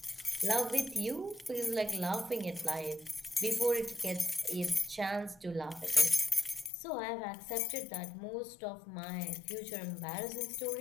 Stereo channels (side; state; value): right; drops out; at 6.7 s